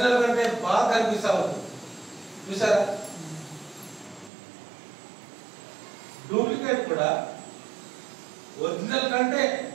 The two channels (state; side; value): drops out; left; at 4.3 s